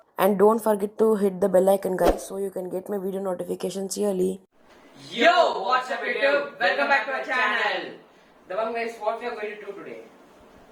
And don't forget to hit the bell icon, guys, so you can get my video notifications yearly. Yo, what's up YouTube? Welcome back to our channel. Dabang Vibes, what we are going to do today?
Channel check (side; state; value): both; identical; correlation 1.00